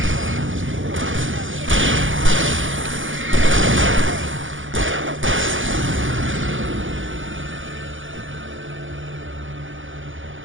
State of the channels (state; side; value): late; left; 0.57 ms